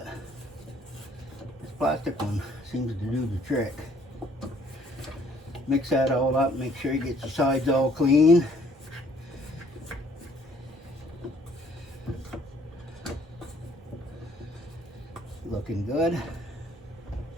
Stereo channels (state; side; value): normal; both; correlation 0.61